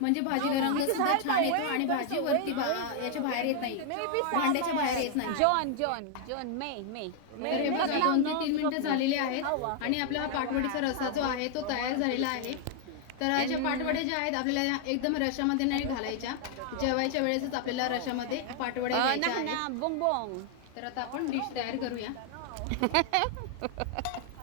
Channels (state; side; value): different; both; correlation 0.00